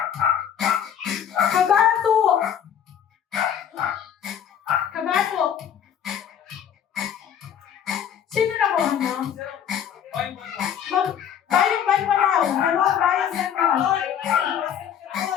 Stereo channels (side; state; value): right; quieter; 9.0 dB